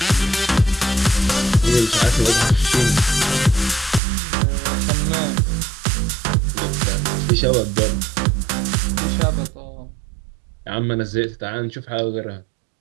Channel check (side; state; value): left; drops out; at 4.0 s